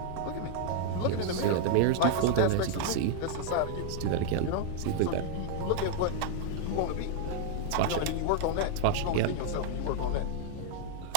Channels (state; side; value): different; both; correlation -0.01